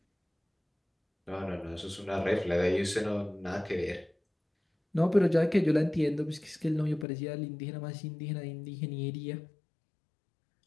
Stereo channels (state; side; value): drops out; right; at 7.1 s